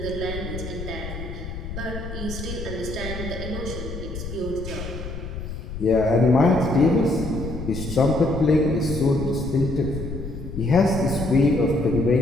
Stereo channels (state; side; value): noise; left; rumble, 8 dB below the sound